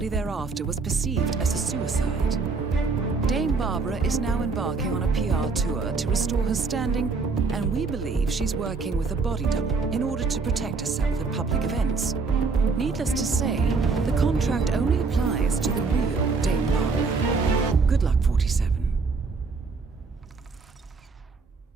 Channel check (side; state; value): left; quieter; 4.4 dB